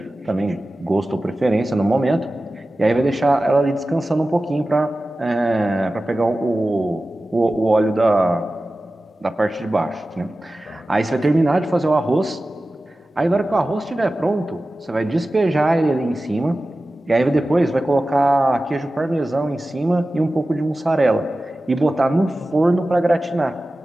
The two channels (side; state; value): both; normal; correlation 0.95